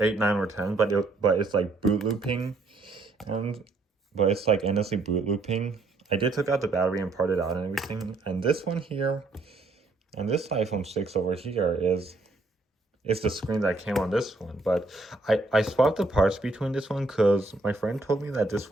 9 or 10, but it's like boot looping, but it's like endlessly boot looping. I did take out the battery and part it out and everything. And this one here, and this iPhone 6 over here is the screen that came on this one, but I swapped the parts between this one because my friend told me that this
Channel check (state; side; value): quieter; left; 3.2 dB